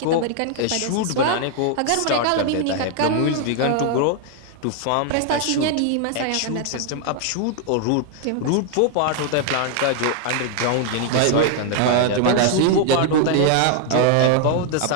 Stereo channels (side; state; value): both; different; correlation 0.00